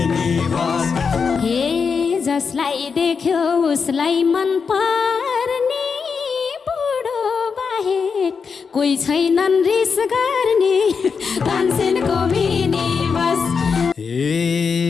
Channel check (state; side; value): quieter; right; 5.6 dB